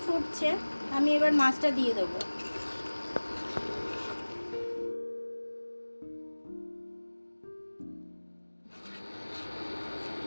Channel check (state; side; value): inverted; both; correlation -1.00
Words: ফুটছে, আমি এবার মাছটা দিয়ে দেবো।